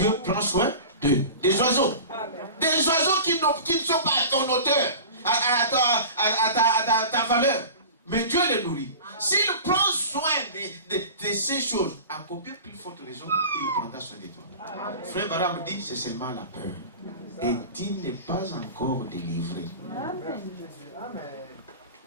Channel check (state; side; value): inverted; both; correlation -0.36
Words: prend soin d'eux. Des oiseaux. Des oiseaux qui ne sont pas à ton hauteur, à ta valeur. Mais Dieu les nourrit. S'il prend soin de ces choses, à combien plus forte raison il prendra soin de toi? Frère Baram dit, c'est seulement la peur. Et tu n'es pas encore délivré.